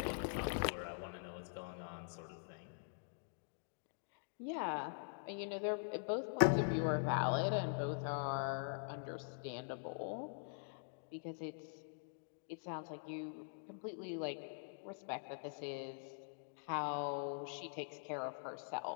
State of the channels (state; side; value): silent; right; digital silence